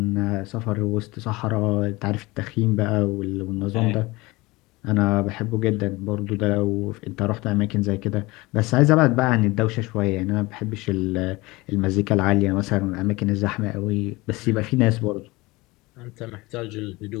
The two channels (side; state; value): right; quieter; 22.2 dB